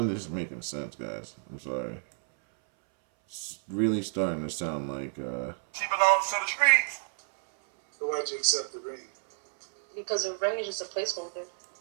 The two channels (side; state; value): left; silent; 58 dB below the other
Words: this is making sense, guys. I'm sorry. It's really starting to sound like, She belongs to the streets. So why'd you accept the ring? Because a ring is just a placeholder.